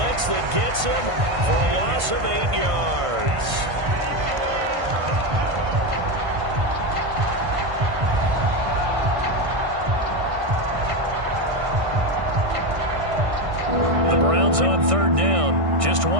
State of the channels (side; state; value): left; late; 1.6 ms